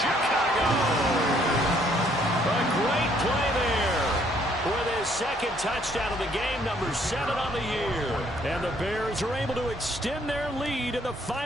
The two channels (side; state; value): both; normal; correlation 0.65